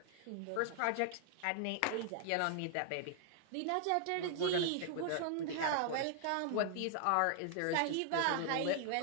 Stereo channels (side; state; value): both; different; correlation 0.00